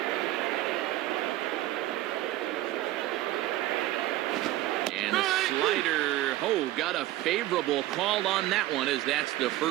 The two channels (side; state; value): left; quieter; 15.7 dB